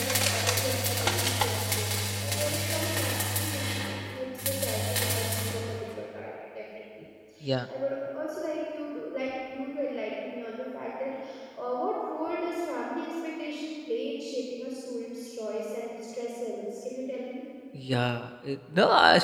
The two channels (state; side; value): identical; both; correlation 1.00